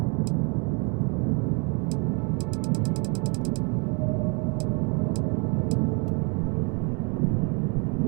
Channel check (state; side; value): quieter; left; 34.0 dB